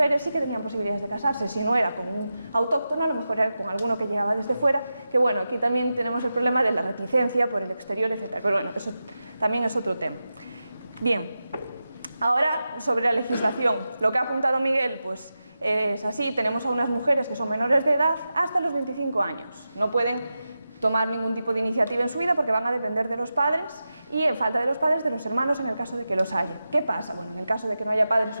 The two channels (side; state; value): both; inverted; correlation -0.92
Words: sí que tenían posibilidades de casarse. Si no era con un autóctono, a lo mejor era con alguno que llegaba desde fuera, que bueno, aquí también tenemos el problema de la reticencia por el exterior, etcétera. Pero bueno, eso también es otro tema. Bien, ahora sobre la legislación. Lo que ha apuntado Miguel, pues es así, tenemos a unas mujeres que son menores de edad hasta los 25 años. No pueden tomar ningún tipo de iniciativa en su vida porque van a depender de los padres y, en falta de los padres, de los hermanos en el caso de que los haya. ¿Qué pasa? Bueno, en el caso de que no haya padres